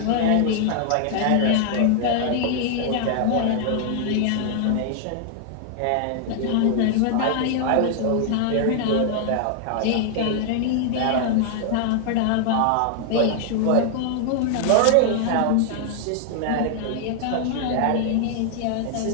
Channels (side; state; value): both; different; correlation 0.00